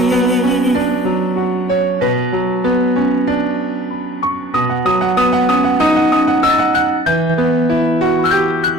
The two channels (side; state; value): both; normal; correlation 0.48